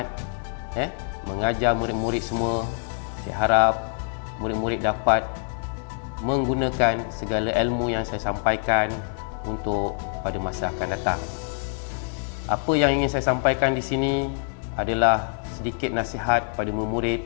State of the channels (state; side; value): silent; right; 62 dB below the other